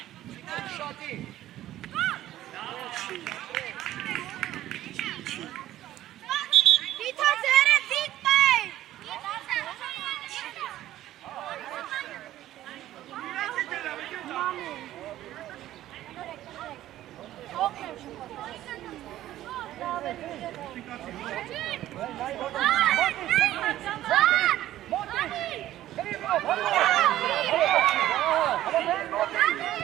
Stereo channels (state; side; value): quieter; left; 13.8 dB